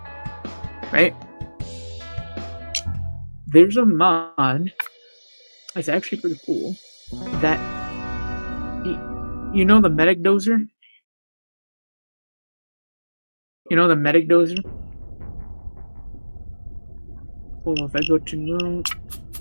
right? There's a mod. It's actually pretty cool. That you know the medic dozer. You know the medic dozer. Well, if I go to no,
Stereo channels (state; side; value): inverted; both; correlation -1.00